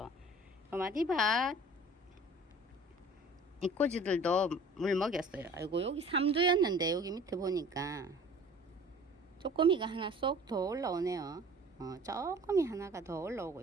마디바 이꼬지들도 물 먹였어요. 아이고 여기 3두였는데 여기 밑에 보니까 쪼꼬미가 하나 쏙 더 올라오네요. 쪼꼬미 하나가 더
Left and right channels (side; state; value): both; normal; correlation 0.47